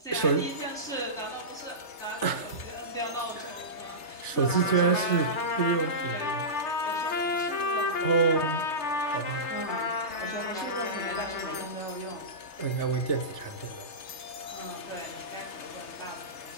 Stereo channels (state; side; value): late; right; 3.3 ms